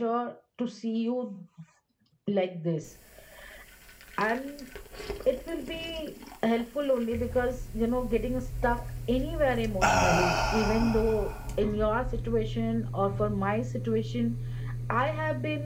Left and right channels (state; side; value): identical; both; correlation 1.00